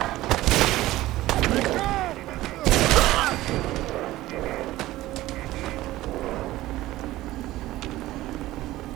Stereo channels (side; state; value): left; quieter; 16.5 dB